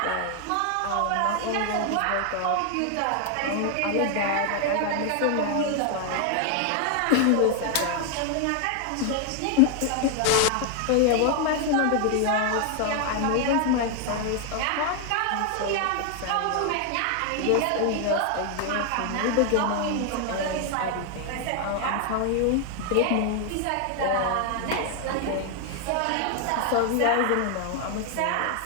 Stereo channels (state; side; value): different; both; correlation 0.00